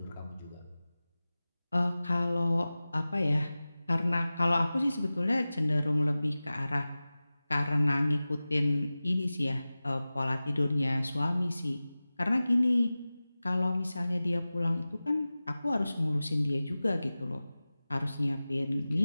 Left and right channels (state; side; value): inverted; both; correlation -0.97